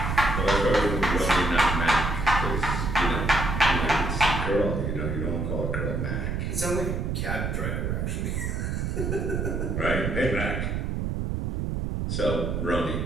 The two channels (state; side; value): noise; right; rumble, 1 dB below the sound